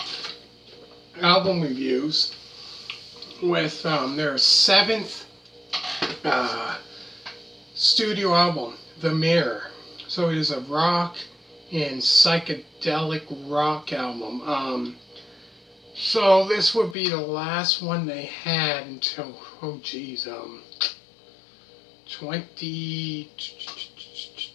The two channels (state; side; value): drops out; right; at 16.9 s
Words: album reviews with their seventh uh, studio album, The Mirror. So it is a rock and psychedelic rock album. So this would be the last one they had until, 20,